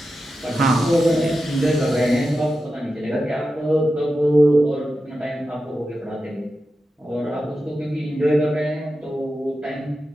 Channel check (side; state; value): both; normal; correlation 0.91